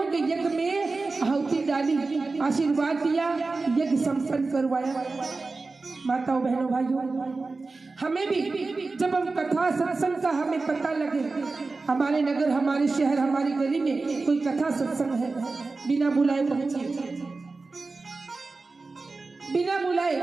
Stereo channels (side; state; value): left; quieter; 3.8 dB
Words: के यज्ञ में आहुति डाली, आशीर्वाद दिया, यज्ञ संपन्न करवाया। माताओं बहनों भाइयों, हमें भी जब हम कथा सत्संग का हमें पता लगे, हमारे नगर हमारे शहर हमारी गली में कोई कथा सत्संग है, बिना बुलाए पहुंचिए, बिना बुलाए